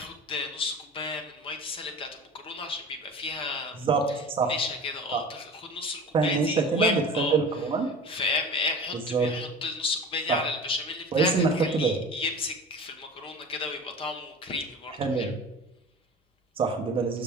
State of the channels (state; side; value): normal; both; correlation 0.37